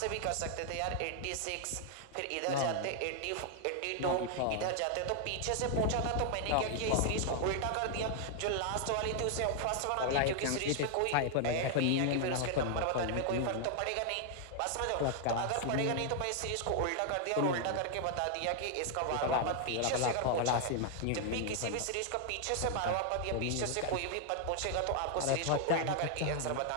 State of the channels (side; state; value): both; different; correlation 0.00